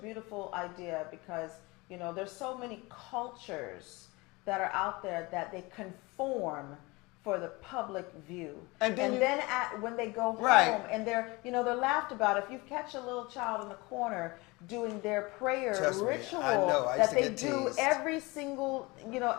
idea because there's so many cultures that are out there that they conform for the public view, And then when they go home, Right. and they're laughed about. If you catch a little child in the corner doing their prayer Trust me, ritual I know. I used that to they get do teased. every single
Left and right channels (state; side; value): quieter; right; 24.2 dB